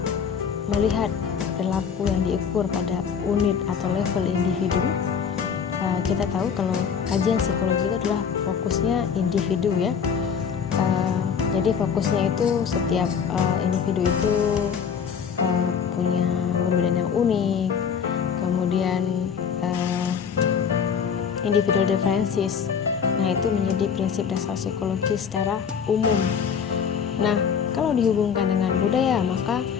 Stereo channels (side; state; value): right; quieter; 7.0 dB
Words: melihat perilaku yang diukur pada unit atau level individu. Kita tahu kalau kajian psikologi itu adalah fokusnya individu ya. Jadi fokusnya itu setiap individu itu punya perbedaan yang unik, kemudian individual differences. Nah, itu menjadi prinsip dasar psikologi secara umum. Nah, kalau dihubungkan dengan budaya, maka